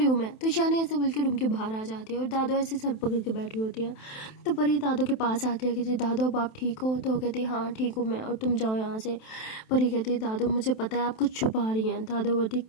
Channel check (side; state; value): right; late; 27 ms